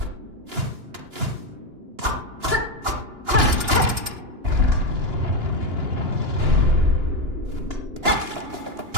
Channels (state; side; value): late; left; 2.9 ms